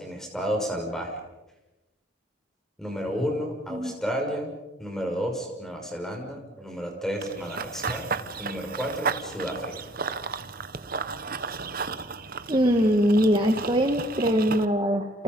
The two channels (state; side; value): normal; both; correlation 0.60